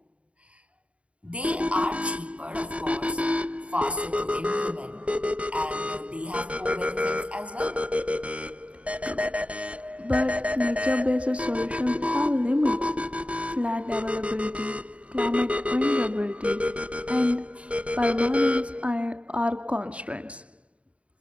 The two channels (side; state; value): left; late; 0.063 ms